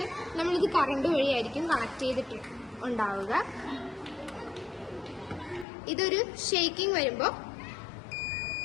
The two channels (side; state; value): right; drops out; at 5.7 s